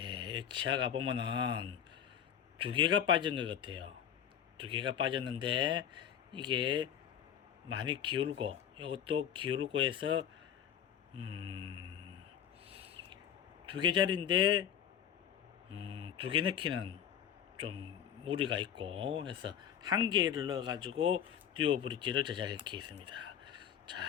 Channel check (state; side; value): quieter; right; 9.2 dB